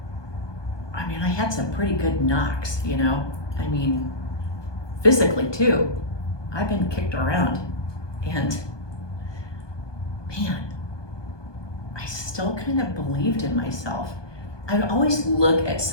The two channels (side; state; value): right; late; 1.2 ms